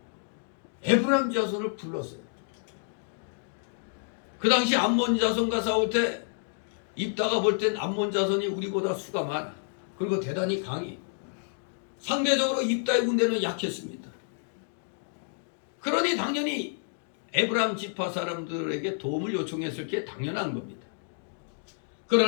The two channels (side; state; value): right; silent; digital silence